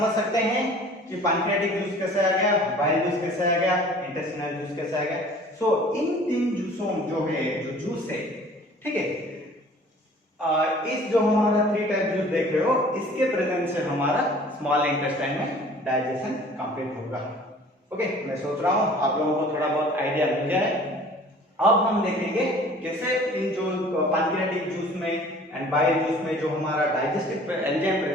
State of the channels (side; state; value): both; normal; correlation 0.49